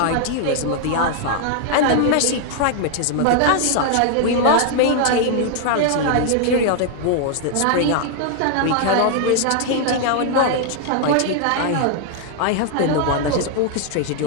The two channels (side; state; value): both; different; correlation 0.00